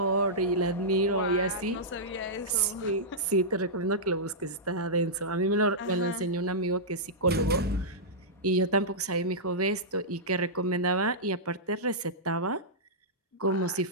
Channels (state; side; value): normal; both; correlation -0.13